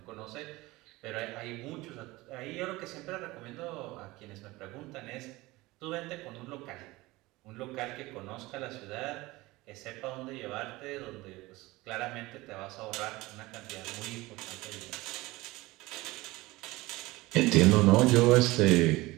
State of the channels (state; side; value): quieter; left; 20.4 dB